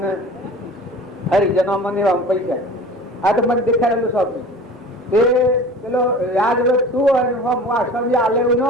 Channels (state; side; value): normal; both; correlation 0.40